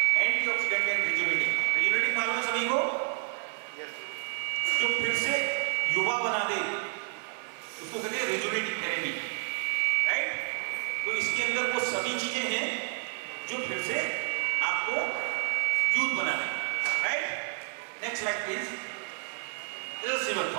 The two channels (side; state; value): left; silent; 58 dB below the other